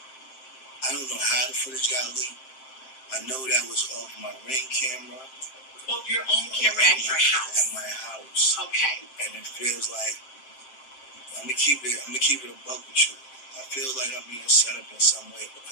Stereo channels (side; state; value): right; late; 7.6 ms